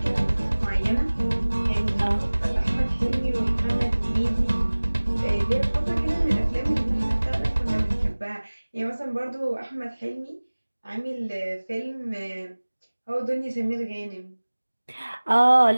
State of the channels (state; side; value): inverted; both; correlation -1.00